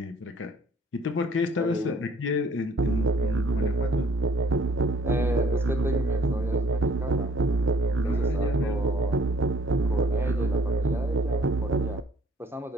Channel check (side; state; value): both; normal; correlation 0.59